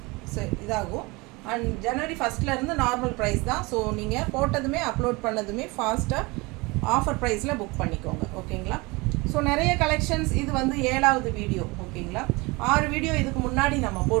இதாகும். அண்ட் ஜனவரி 1 நார்மல் ப்ரைஸ் தான். ஸோ நீங்கள் போட்டதுமே அப்லோட் பண்ணதுமே ஃபாஸ்ட்டாக ஆஃபர் ப்ரைஸில் புக் பண்ணிக்கோங்க. ஓகேங்களா? ஸோ நிறைய கலெக்ஷன்ஸ். இது வந்து 7வது வீடியோ. ஓகேங்களா? 6 வீடியோ இதுக்கு முன்னாடி நம்ம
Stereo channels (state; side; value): quieter; left; 24.9 dB